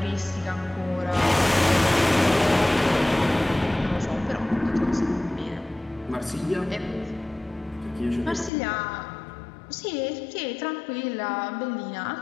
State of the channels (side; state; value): right; drops out; at 8.5 s